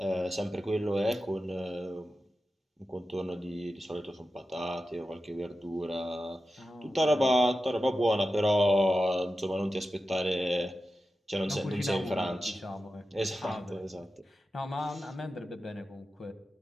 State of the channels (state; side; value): normal; both; correlation 0.92